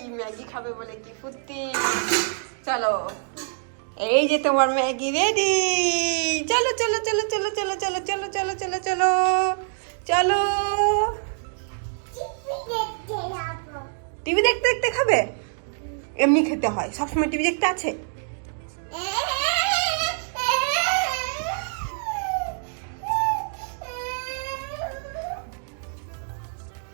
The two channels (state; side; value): silent; left; digital silence